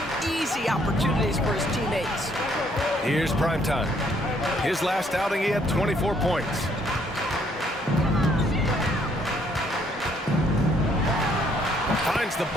easy opportunities for his teammates. Here's primetime. His last outing, he had 24 points. Finds the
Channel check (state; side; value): normal; both; correlation 0.67